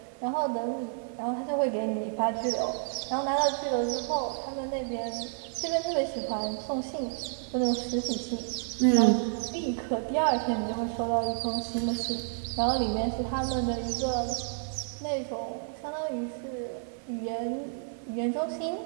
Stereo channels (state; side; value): silent; left; 58 dB below the other